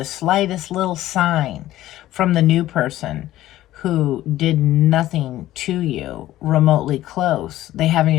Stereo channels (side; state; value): right; quieter; 14.6 dB